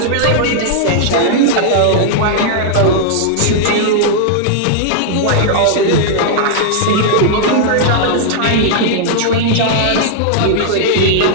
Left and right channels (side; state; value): both; different; correlation -0.01